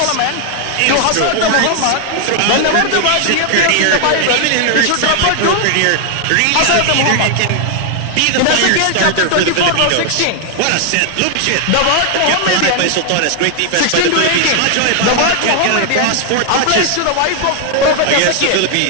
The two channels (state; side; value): different; both; correlation 0.00